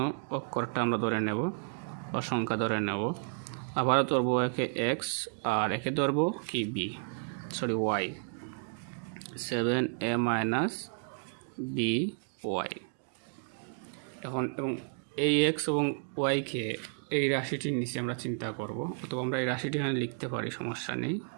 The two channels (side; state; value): left; silent; 56 dB below the other